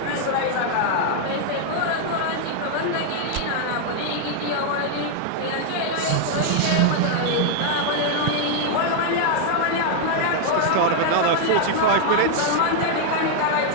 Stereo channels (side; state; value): both; different; correlation 0.00